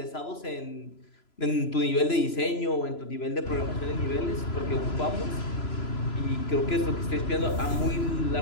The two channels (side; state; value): right; late; 3.0 ms